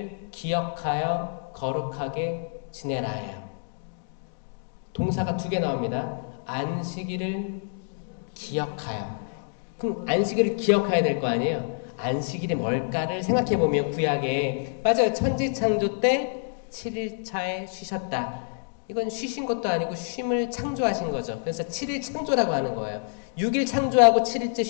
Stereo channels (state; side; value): silent; right; digital silence